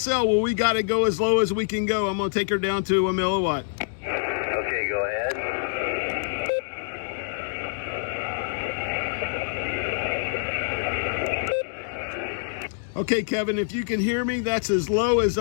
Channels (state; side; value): silent; right; digital silence